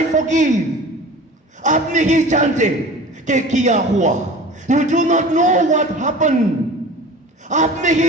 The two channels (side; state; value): both; normal; correlation 0.39